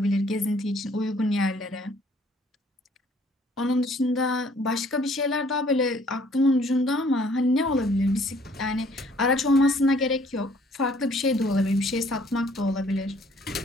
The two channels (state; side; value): normal; both; correlation 0.59